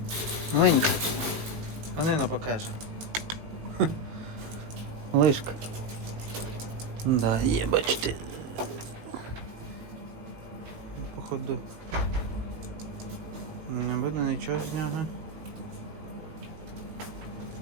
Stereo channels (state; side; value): late; left; 19 ms